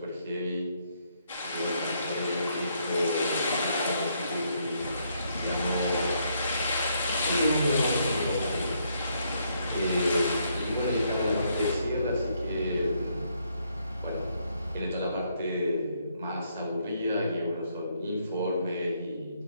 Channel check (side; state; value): both; inverted; correlation -0.73